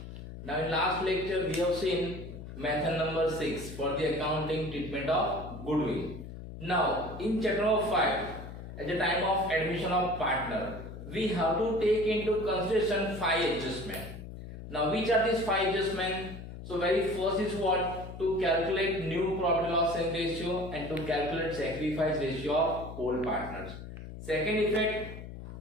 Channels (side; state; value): left; noise; hum, 11 dB below the sound